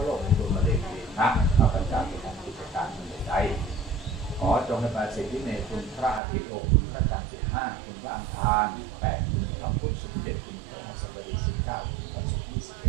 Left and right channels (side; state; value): left; drops out; at 6.2 s